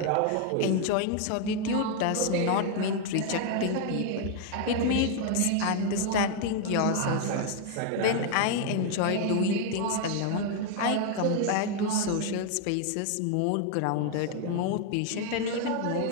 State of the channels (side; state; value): both; different; correlation 0.00